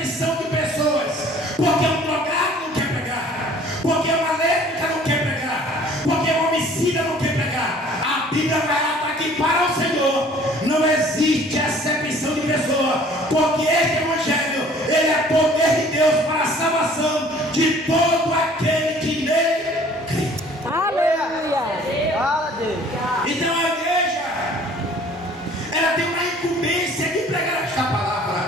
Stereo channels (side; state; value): both; normal; correlation 0.52